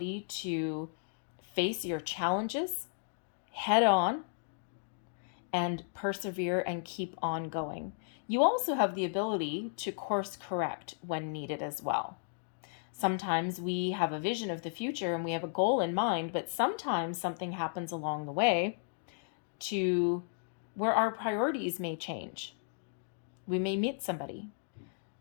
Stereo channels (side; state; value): right; silent; digital silence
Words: to face your challenges head on and persevere and keep on going. You also have the ability to course correct when needed as well. Sometimes we have a vision of the future and we have a goal in mind, but sometimes something happens along the way to where our priorities may change. We may meet somebody.